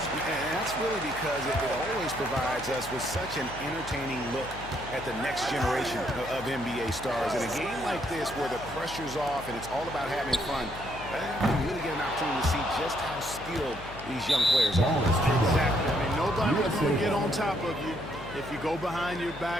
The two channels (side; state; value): left; noise; hum, 14 dB below the sound